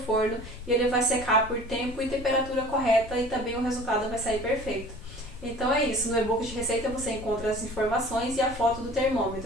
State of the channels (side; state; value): left; noise; rumble, 14 dB below the sound